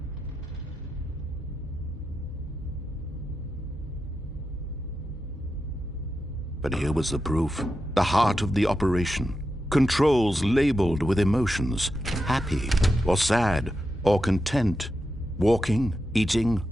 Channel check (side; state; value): both; normal; correlation 0.88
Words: But here was the proof. The heart of the operation. Controls labeled with emotions. Happy, or sad, or content. Walking, eating,